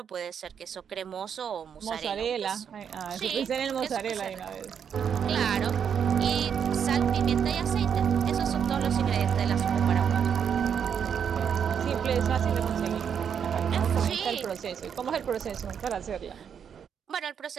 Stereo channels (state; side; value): quieter; left; 7.7 dB